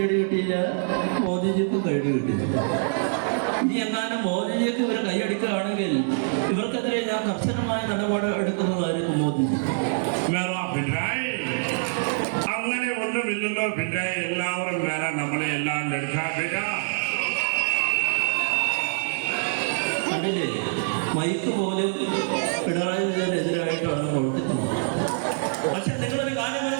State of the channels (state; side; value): silent; left; digital silence